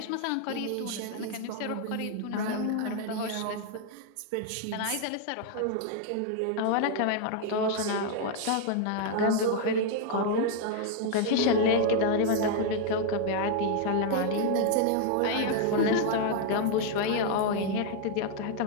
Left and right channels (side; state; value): both; different; correlation 0.00